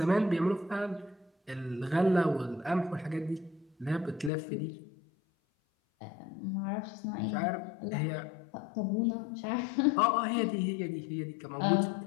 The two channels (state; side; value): drops out; right; at 4.3 s